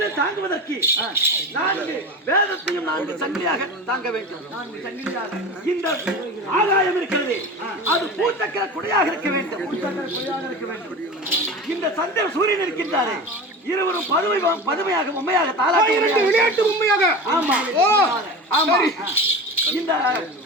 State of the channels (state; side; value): normal; both; correlation 0.30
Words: தாங்குவதற்கு 4 வேதத்தையும் 4 சங்கிலியாக தாங்க வேண்டும். 4 சங்கிலியாக இந்த ஆகாயம் இருக்கிறது, அது பூச்சக்கர குடையாக இருக்க வேண்டும். இந்த சந்திர சூரியன் இருக்கின்றாரே, இருவரும் பதுமையாக உண்மையாக தாளாட்டி விளையாட்டு உண்மையாக. ஆமா, ஆமா, இந்த